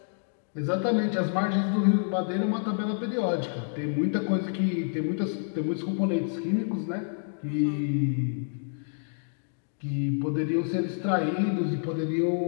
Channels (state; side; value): silent; right; digital silence